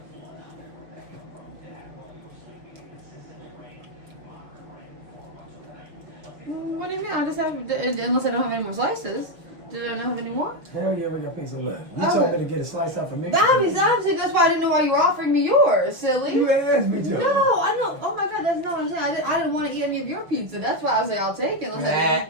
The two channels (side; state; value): left; late; 6.1 ms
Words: What do you mean? I just have, unless I don't have any more slices. Did I not have any more? Hell yeah, we got pizza left. You Okay. told me to get a slice out for me. Obviously, that's why I didn't know why you were offering me yours, silly. You asked me to. No, I know. Oh my god, that's not what I'm saying. I didn't want to eat any of your pizza. That's why I was like, I'll take it. Unless